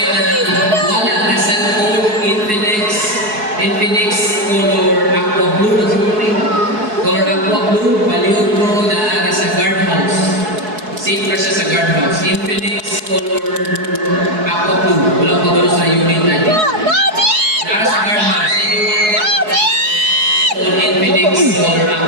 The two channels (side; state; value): left; late; 4.7 ms